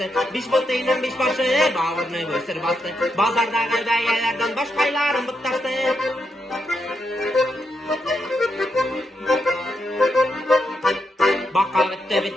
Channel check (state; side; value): normal; both; correlation 0.82